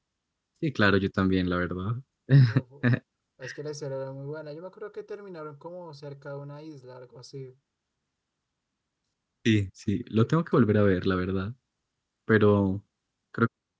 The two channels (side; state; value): both; identical; correlation 1.00